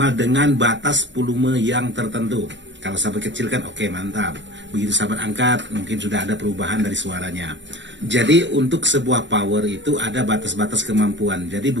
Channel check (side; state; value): left; late; 0.53 ms